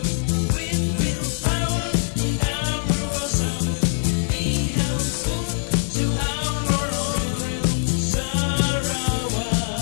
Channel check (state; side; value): silent; right; digital silence